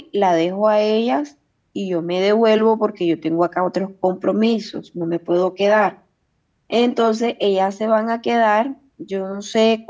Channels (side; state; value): both; identical; correlation 1.00